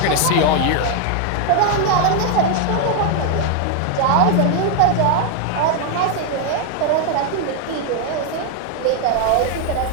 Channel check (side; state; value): both; different; correlation 0.01